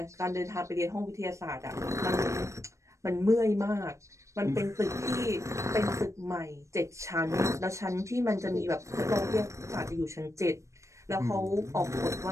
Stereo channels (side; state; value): left; late; 0.15 ms